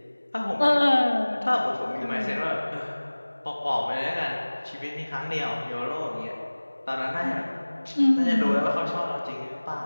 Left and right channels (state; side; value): inverted; both; correlation -1.00